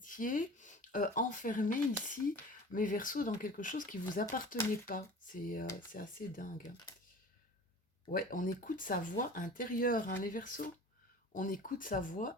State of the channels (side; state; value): both; normal; correlation 0.40